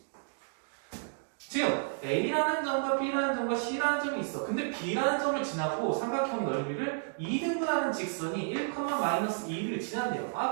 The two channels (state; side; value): silent; left; digital silence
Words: 지금 A라는 점과 B라는 점과 C라는 점이 있어. 근데 B라는 점을 지나고 삼각형 넓이를 2등분하는 직선이 1,-2를 지난대요.